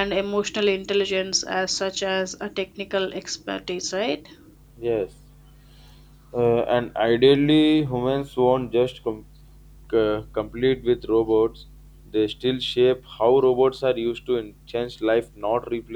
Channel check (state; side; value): identical; both; correlation 1.00